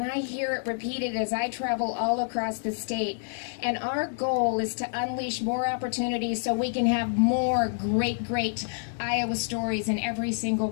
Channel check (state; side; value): silent; right; digital silence